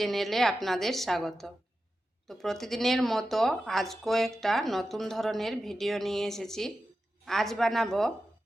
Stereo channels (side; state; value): both; normal; correlation 0.91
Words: আপনাদের স্বাগত। তো প্রতিদিনের মতো আজকেও একটা নতুন ধরনের ভিডিও নিয়ে এসেছি। আজ বানাবো